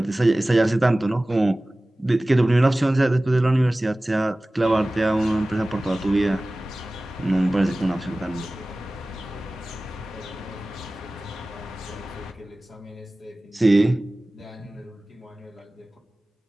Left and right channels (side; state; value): both; normal; correlation 0.98